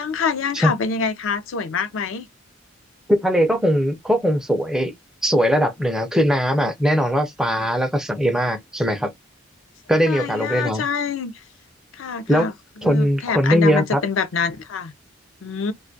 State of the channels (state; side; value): normal; both; correlation 0.74